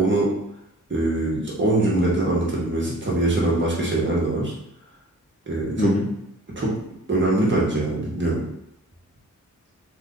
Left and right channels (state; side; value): normal; both; correlation 0.47